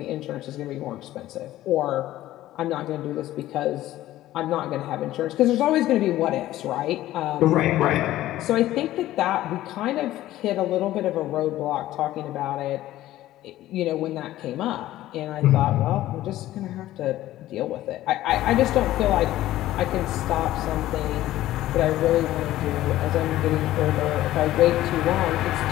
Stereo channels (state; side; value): quieter; right; 14.8 dB